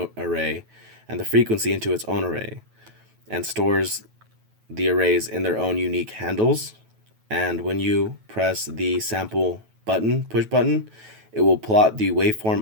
array and the frequency into its own array, and stores the arrays in their own unique handles. And when you press the sample button, push button, it will plot the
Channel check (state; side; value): late; left; 9.2 ms